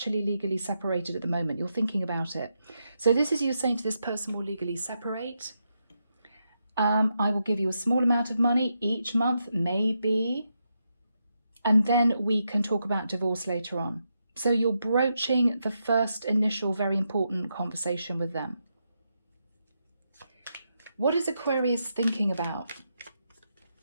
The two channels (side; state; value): both; inverted; correlation -0.83